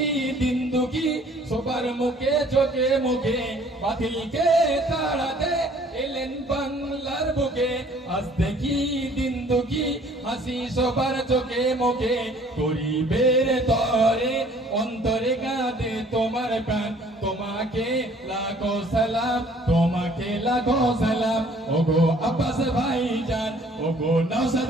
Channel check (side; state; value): both; normal; correlation 0.56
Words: দিন দুঃখী সবার মুখে চোখে মুখে বাতিলকে তাড়াতে এলেন বাংলার বুকে আজ দেখি দিন দুঃখী হাসি সবার চোখে মুখে গরিবের তরে অন্তরে কাঁদে তোমার প্রাণ তোমাকে লাখো সালাম তোমাকে লাখো সালাম ওগো আব্বাস ভাইজান ওগো নওশাদ